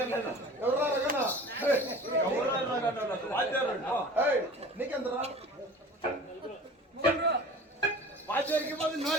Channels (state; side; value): normal; both; correlation 0.41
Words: ఎవరా రగనా నీకెంతరా వాచేరికి పోతే